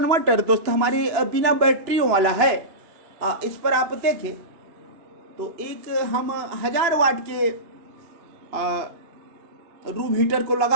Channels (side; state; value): left; late; 2.9 ms